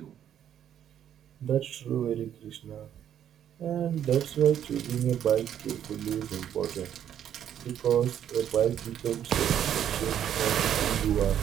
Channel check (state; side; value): quieter; left; 9.9 dB